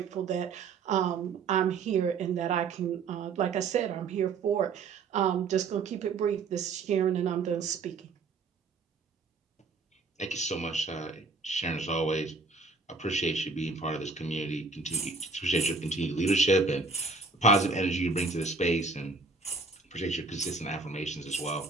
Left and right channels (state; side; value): quieter; left; 4.2 dB